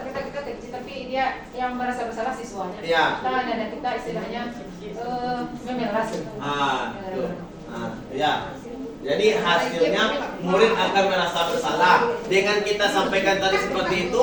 kecil, tapi dia yang merasa bersalah siswanya. Ya. Kita nada kita istilahnya memelas. Ya. Jadi hasilnya murid akan merasa bersalah. Dengan kita sampaikan tadi seperti itu,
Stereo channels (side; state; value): both; identical; correlation 1.00